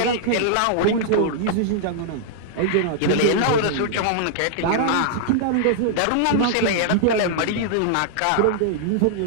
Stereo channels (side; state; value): both; different; correlation -0.01